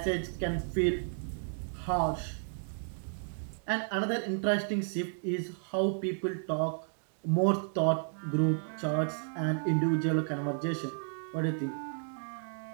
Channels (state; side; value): silent; left; digital silence